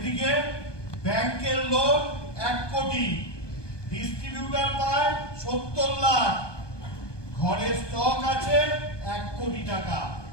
ব্যাংকের লোন 1 কোটি, ডিস্ট্রিবিউটার পায় 70 লাখ, ঘরে স্টক আছে 1 কোটি টাকা,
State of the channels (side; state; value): right; late; 1.2 ms